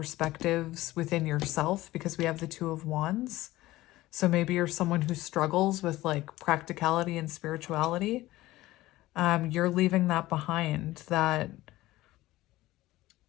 within yourself because we have the Two of Wands. So maybe you're someone who struggles with like practicality and spirituality. You're leaving that behind. That,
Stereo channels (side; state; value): right; quieter; 17.3 dB